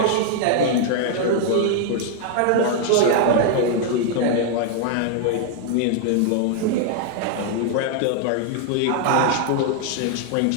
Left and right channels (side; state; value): both; different; correlation 0.00